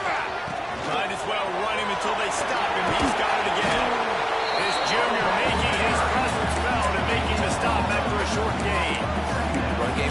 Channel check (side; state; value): both; identical; correlation 1.00